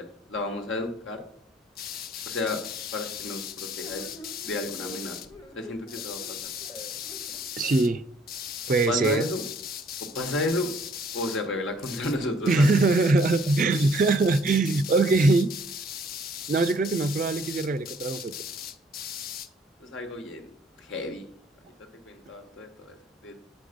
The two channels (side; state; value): both; normal; correlation 0.60